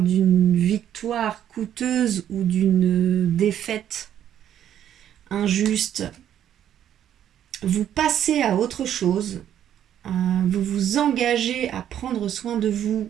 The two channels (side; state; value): left; quieter; 10.4 dB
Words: d'une victoire coûteuse ou d'une défaite injuste. Vous passez à autre chose, vous vous engagez à prendre soin de vous